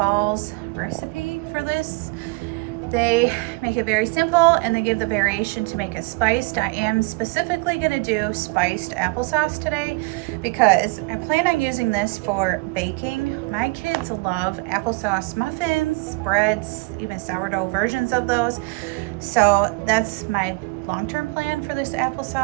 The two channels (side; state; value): left; quieter; 26.4 dB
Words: recipe for this. They make it very simple and they give the variation to make it spiced. I am specifically gonna do spiced applesauce today because I plan on using this for baking. My kids love applesauce muffins, breads, even sourdough versions of those. So that's my long-term plan for this